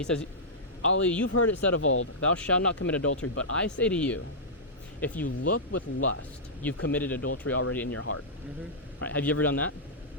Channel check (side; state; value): both; normal; correlation -0.13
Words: says, Ali, you've heard it said of old, "Thou shalt not commit adultery," but I say to you, if you look with lust, you've committed adultery already in your heart. Right? Have you ever done that?